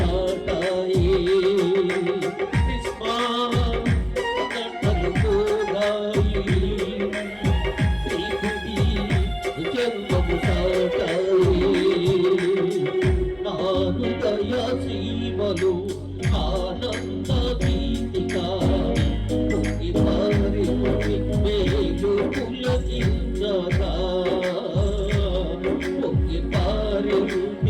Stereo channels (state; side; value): identical; both; correlation 1.00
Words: హృదయ సీమలు ఆనంద గీతిగా పొంగి పారింది మేలు పులకించగా, పొంగి